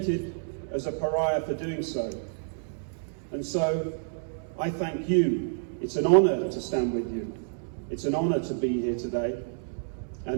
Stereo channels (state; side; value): silent; left; 59 dB below the other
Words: as a pariah for doing so. And so I thank you. It's an honor to stand with you. It's an honor to be here today.